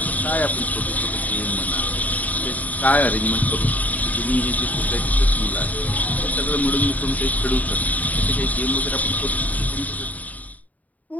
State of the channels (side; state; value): right; late; 0.075 ms